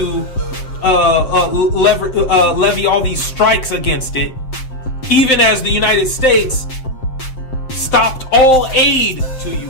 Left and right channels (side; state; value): right; late; 7.6 ms